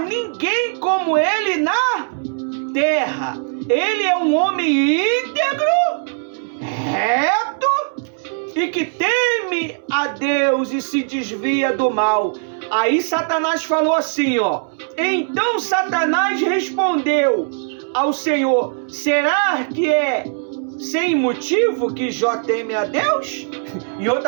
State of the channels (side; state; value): left; silent; 66 dB below the other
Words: como ele na terra. Ele é um homem íntegro, reto e que teme a Deus e se desvia do mal. Aí Satanás falou assim, ó: então Satanás respondeu ao Senhor: será que é sem motivo que Jó teme a Deus? Em